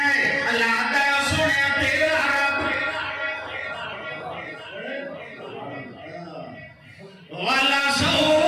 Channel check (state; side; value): identical; both; correlation 1.00